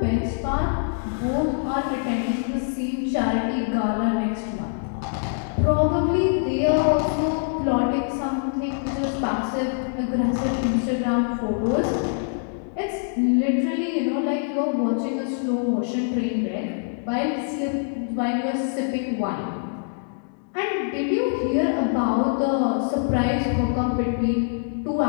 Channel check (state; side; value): silent; right; digital silence